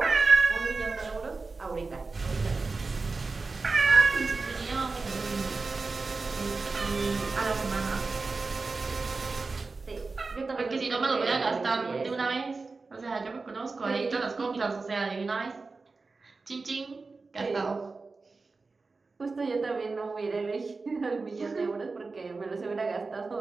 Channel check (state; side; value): quieter; left; 4.0 dB